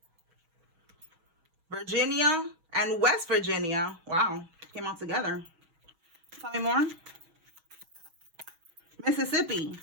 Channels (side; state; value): left; late; 6.3 ms